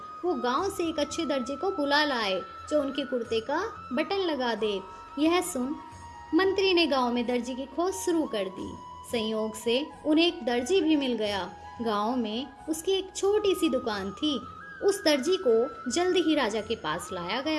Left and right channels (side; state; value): both; identical; correlation 1.00